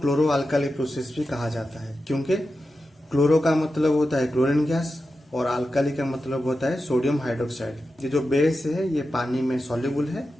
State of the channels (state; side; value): normal; both; correlation 0.91